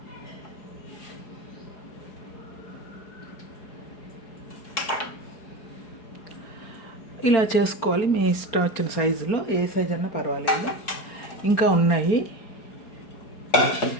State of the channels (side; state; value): right; late; 4.8 ms